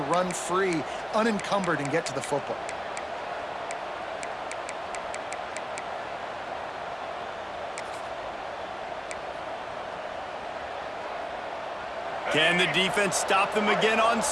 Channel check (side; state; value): both; identical; correlation 1.00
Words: free, unencumbered, and get to the football. Can the defense stop them again on